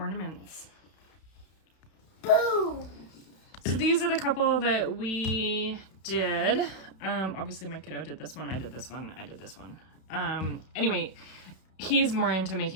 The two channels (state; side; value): late; right; 31 ms